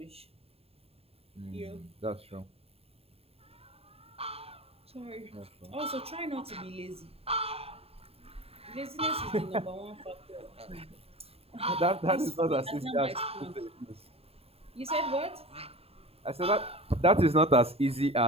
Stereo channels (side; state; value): left; late; 0.29 ms